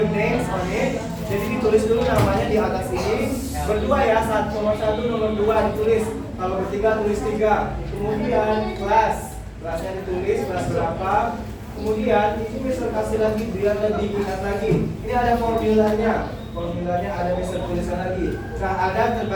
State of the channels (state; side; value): identical; both; correlation 1.00